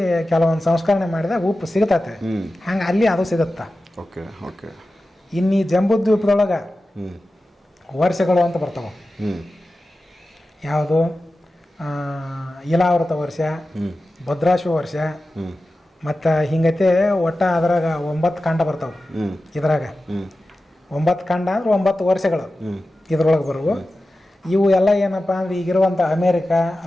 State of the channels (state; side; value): normal; both; correlation 0.94